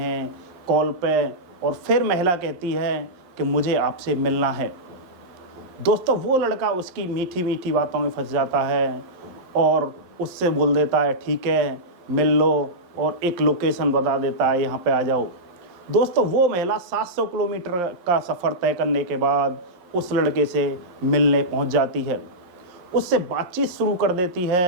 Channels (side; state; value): left; late; 11 ms